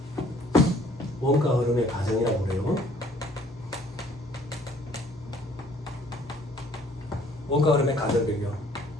원가 흐름의 가정이라고 그래요. 원가 흐름의 가정 변경.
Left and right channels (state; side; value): normal; both; correlation 0.59